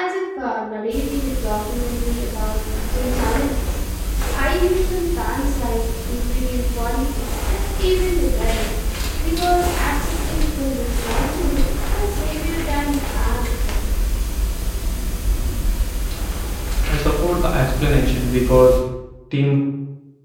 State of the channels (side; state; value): both; identical; correlation 1.00